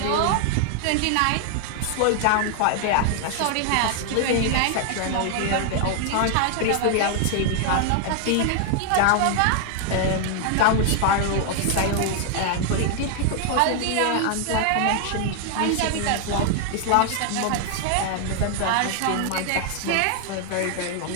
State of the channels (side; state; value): both; different; correlation 0.00